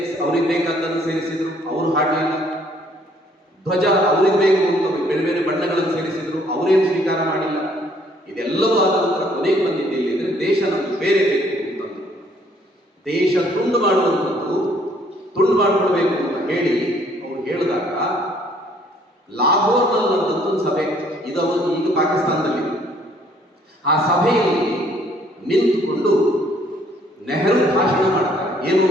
ಅವ್ರಿಗೆ ಬೇಕಾದ್ದನ್ನು ಸೇರಿಸಿದ್ರು, ಅವರು ಹಾಡಲಿಲ್ಲ. ಧ್ವಜ ಅವ್ರಿಗೆ ಬೇಕು ಅಂತ ಬೇರೆ ಬೇರೆ ಬಣ್ಣಗಳನ್ನು ಸೇರಿಸಿದ್ರು, ಅವರೇನು ಸ್ವೀಕಾರ ಮಾಡಿಲ್ಲ. ಇದೆಲ್ಲವೂ ಆದ ನಂತರ ಕೊನೆಗೆ ಬಂದಿದ್ದು ಎಲ್ಲಿದ್ರೆ, ದೇಶ ನಮಗೆ ಬೇರೆ ಬೇಕು ಅಂತಂದು ದೇಶ ತುಂಡು ಮಾಡುವಂಥದ್ದು, ತುಂಡು ಮಾಡಿಕೊಡ್ಬೇಕು ಅಂತ ಹೇಳಿ ಅವ್ರು ಹೇಳಿದಾಗ ಲಾಹೋರ್ನಲ್ಲಿ ನಡೆದಂಥ ಒಂದು ಸಭೆ, ಇದು ಈಗ ಪಾಕಿಸ್ತಾನದಲ್ಲಿ. ಆ ಸಭೆಯಲ್ಲಿ ನಿಂತುಕೊಂಡು ನೆಹರು ಭಾಷಣ ಮಾಡ್ತಾರೆ. ಏನು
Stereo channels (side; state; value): both; normal; correlation 0.63